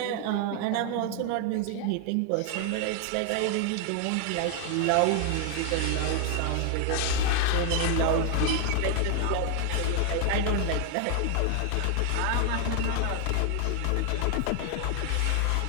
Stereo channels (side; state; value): both; different; correlation 0.00